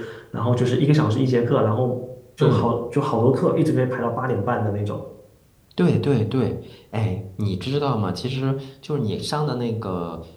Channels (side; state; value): both; identical; correlation 1.00